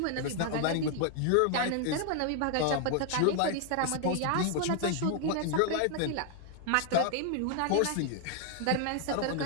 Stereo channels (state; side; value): different; both; correlation 0.00